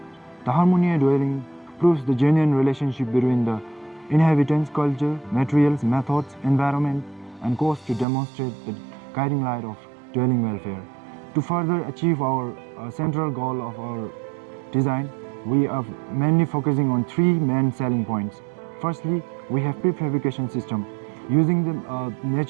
the Harmonia Dwelling proves the genuine relationship between the inhabitants, culture, materials, methods, environment, and cost to demonstrate the guiding light of dwelling welfare. To further achieve our central goal of our design, we are mainly focusing on three main selling points. Firstly, we have prefabrication system. Using the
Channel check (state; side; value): drops out; left; at 8.1 s